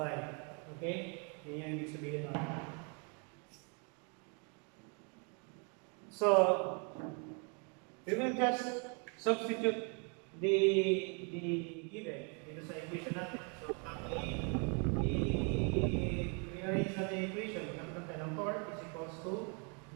Okay? Yan yung ibig sabihin natin. So, we will just substitute the given dito sa equation natin. So, i-rearrange natin yung equation. Magkakaroon tayo ng torque is equals to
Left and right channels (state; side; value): quieter; left; 36.5 dB